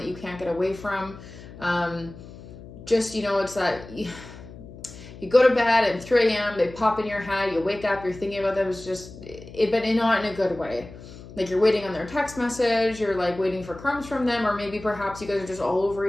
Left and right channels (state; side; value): noise; left; hum, 16 dB below the sound